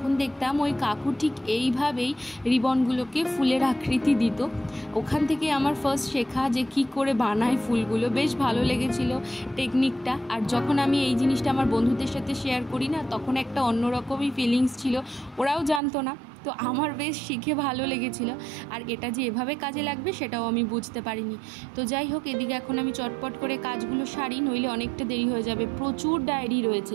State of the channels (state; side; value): drops out; left; at 15.8 s